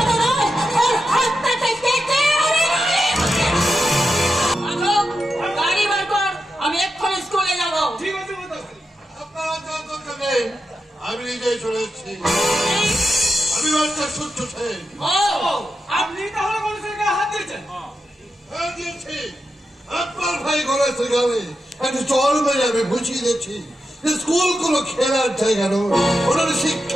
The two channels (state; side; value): normal; both; correlation 0.88